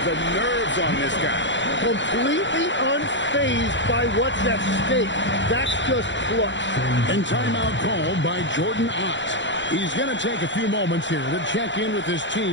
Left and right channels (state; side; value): late; right; 0.54 ms